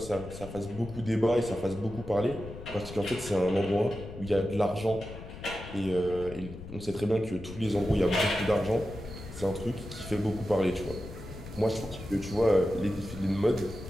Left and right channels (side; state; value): left; noise; rumble, 12 dB below the sound